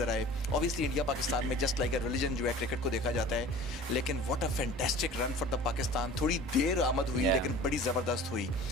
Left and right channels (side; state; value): both; normal; correlation 0.43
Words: आए. Obviously India Pakistan में just like a religion जो है क्रिकेट को देखा जाता है, लेकिन what a fantastic run for the Pakistan. थोड़ी देर आमद हुई लेकिन बड़ी ज़बरदस्त हुई.